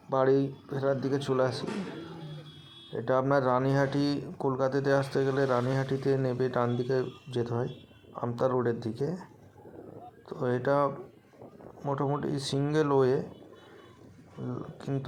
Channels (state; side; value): identical; both; correlation 1.00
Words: বাড়ি ফেরার দিকে চলে আসি। এটা আপনার রানীহাটি, কলকাতাতে আসতে গেলে রানীহাটিতে নেমে ডান দিকে যেতে হয় আমতা রোডের দিকে। তো এটা মোটামুটি সিঙ্গেল ওয়ে,